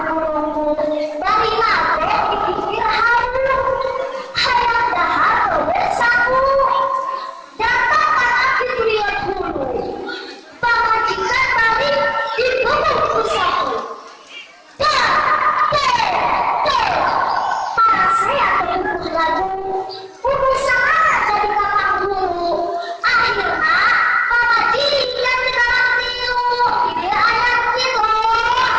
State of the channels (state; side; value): identical; both; correlation 1.00